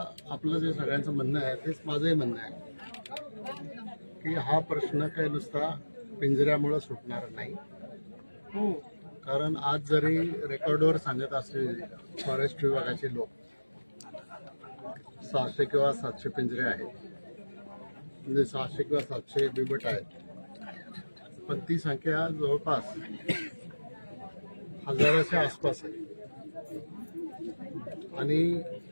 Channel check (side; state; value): both; inverted; correlation -1.00